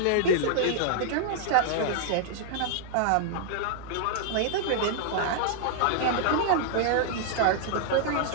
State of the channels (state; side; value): different; both; correlation 0.00